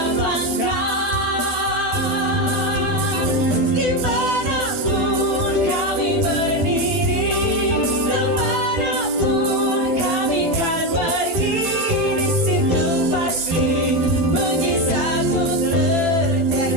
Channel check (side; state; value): left; late; 12 ms